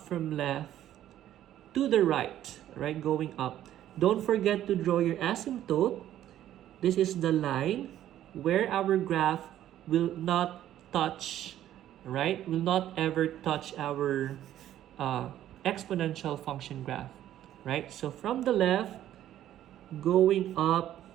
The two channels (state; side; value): quieter; left; 12.1 dB